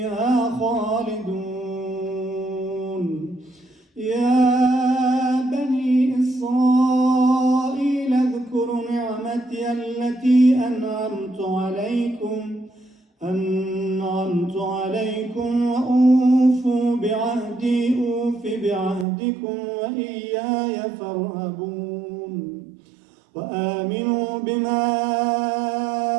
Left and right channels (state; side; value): drops out; left; at 19.1 s